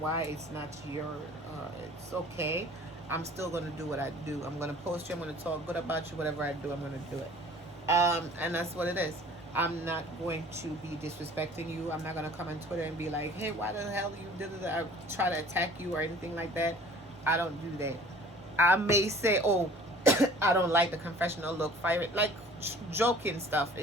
it's not your, it's okay. I'm still going to do what I do. I'm going to post you. I'm going to talk good about you. Whatever I do, I'm going to do it. And that's what it is. I'm not going to be disrespecting you. I'm not going to come on Twitter and be like, hey, why the hell you did it? I try to attack you or anything like that. I don't do that. I may say, oh, I don't like the confessional look, fire it, like joking stuff.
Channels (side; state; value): both; normal; correlation 0.48